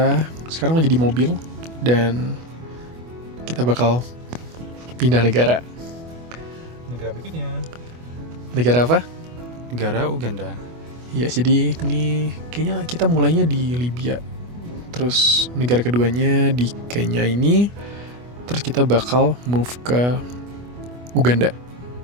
sekarang lagi di mobil, dan kita bakal pindah negara. Negara berikutnya. Negara apa? Negara Uganda. Ya, jadi ini kayaknya kita mulainya di Libya. Terus negara keduanya di Kenya ini. Terus kita bakal move ke Uganda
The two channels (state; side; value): late; left; 24 ms